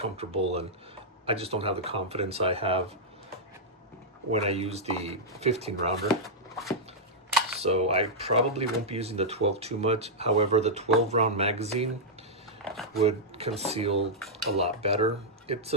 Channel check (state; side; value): normal; both; correlation -0.07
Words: and I just don't have the confidence I have when I use the 15 rounder. So I probably won't be using the 12 too much. However, the 12 round magazine would conceal a lot better. It's